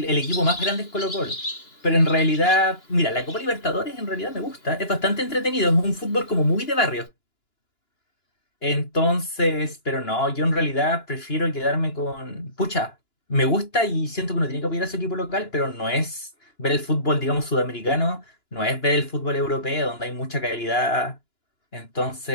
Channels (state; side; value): late; right; 2.9 ms